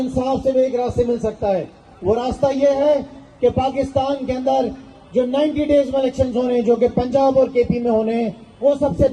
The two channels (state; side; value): identical; both; correlation 1.00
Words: से भी एक रास्ते मिल सकता है। वो रास्ता ये है कि पाकिस्तान के अंदर जो 90 डेज में इलेक्शंस होने हैं, जो कि पंजाब और केपी में होने हैं, वो सबसे